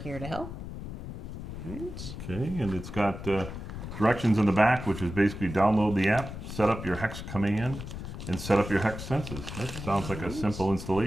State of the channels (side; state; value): left; noise; rumble, 9 dB below the sound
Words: to help. All right. Okay, and it's got directions in the back, which is basically download the app, set up your Hex command, and set up your Hex senses. That sounds like a simple